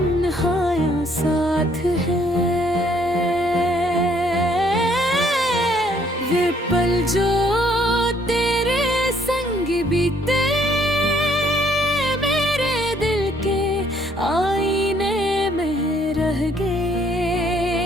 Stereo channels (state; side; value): normal; both; correlation 0.65